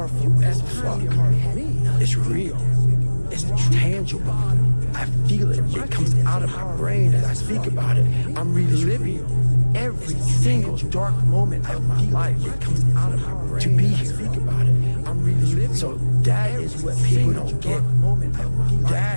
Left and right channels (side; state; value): both; inverted; correlation -1.00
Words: as fuck. It's real. It's tangible. I feel it. It comes out of my brain as I speak about it. I'm reliving every single dark moment of my life. It comes out of my brain to be here. I'm reliving. So that is what people don't get.